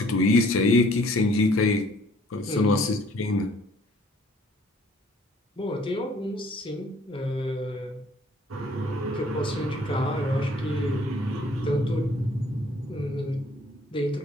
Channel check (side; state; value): both; normal; correlation 0.58